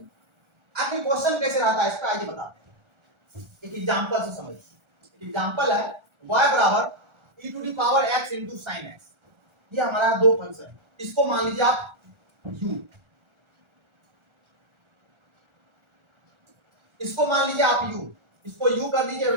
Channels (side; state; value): left; late; 1.4 ms